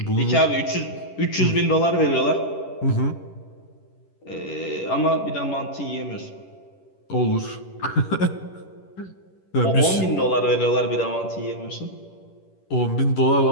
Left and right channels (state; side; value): late; right; 11 ms